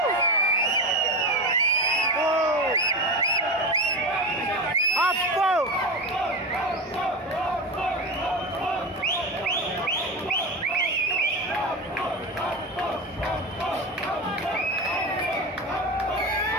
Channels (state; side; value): normal; both; correlation 0.21